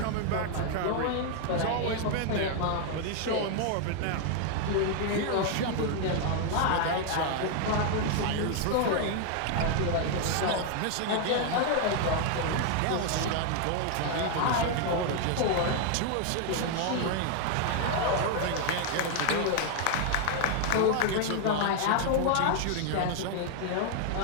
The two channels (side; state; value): both; different; correlation 0.00